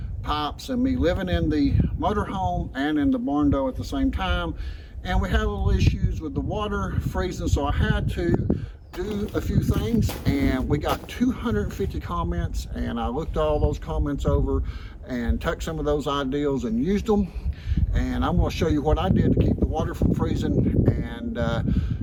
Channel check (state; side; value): identical; both; correlation 1.00